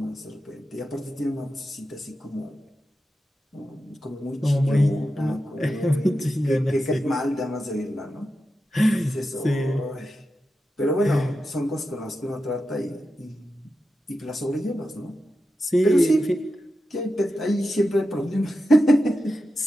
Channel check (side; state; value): both; normal; correlation 0.90